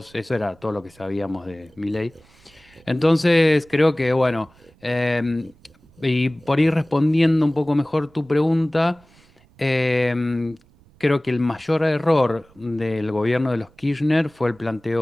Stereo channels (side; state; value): right; noise; rumble, 29 dB below the sound